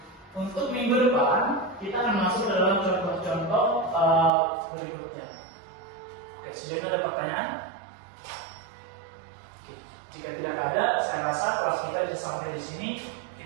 untuk minggu depan kita akan masuk ke dalam contoh-contoh berikutnya. Oke, sejauh ini ada pertanyaan? Oke, jika tidak ada, saya rasa kelas kita bisa sampai di sini.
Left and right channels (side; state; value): left; drops out; at 4.3 s